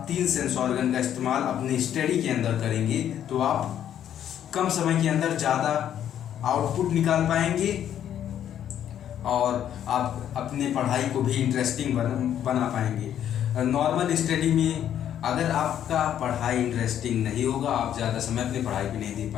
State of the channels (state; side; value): quieter; right; 10.2 dB